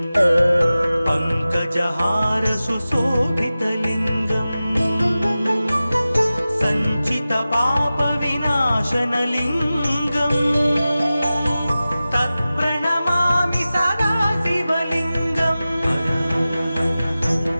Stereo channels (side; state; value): both; inverted; correlation -0.96